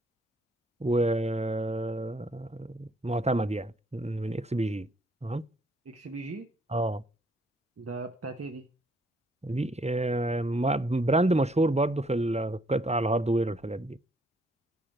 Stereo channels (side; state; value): both; normal; correlation 0.67